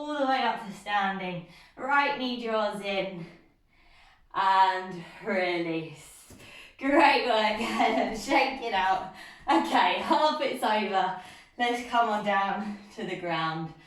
the way up to standing. Right knee draws in. And release. Great work. Shake it out. Okay, half it's over. Let's come on down to the ground.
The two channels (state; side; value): identical; both; correlation 1.00